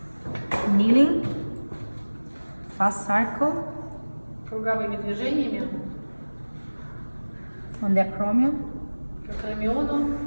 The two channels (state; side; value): inverted; both; correlation -1.00